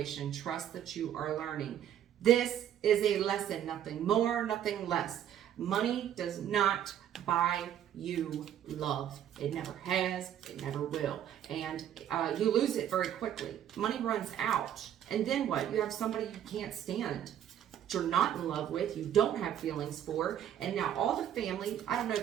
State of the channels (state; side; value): quieter; left; 10.3 dB